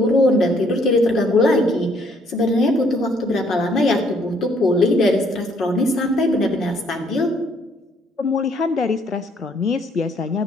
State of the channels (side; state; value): both; normal; correlation 0.66